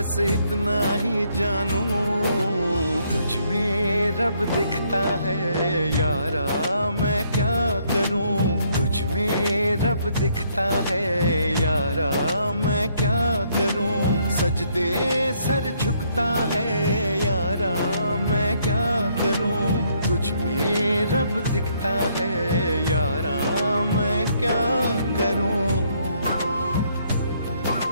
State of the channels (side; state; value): both; inverted; correlation -0.70